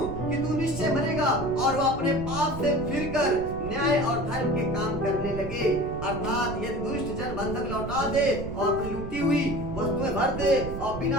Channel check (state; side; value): noise; right; rumble, 9 dB below the sound